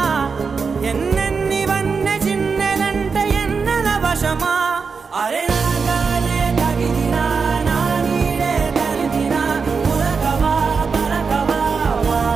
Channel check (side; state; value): left; quieter; 5.2 dB